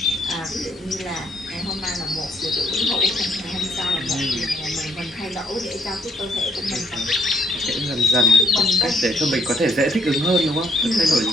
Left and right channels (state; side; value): normal; both; correlation 0.69